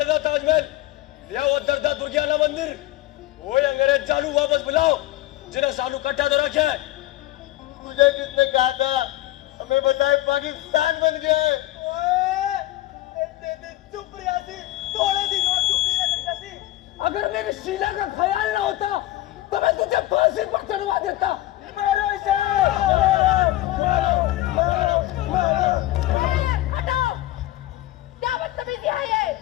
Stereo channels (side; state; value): right; quieter; 16.1 dB